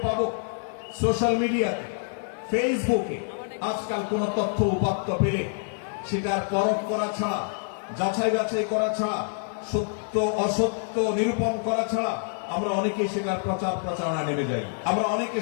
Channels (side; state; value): right; silent; digital silence